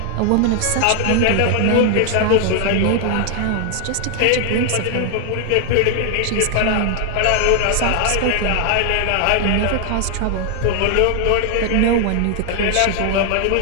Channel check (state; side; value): different; both; correlation 0.00